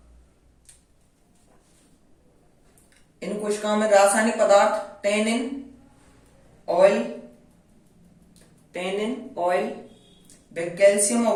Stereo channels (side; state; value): both; identical; correlation 1.00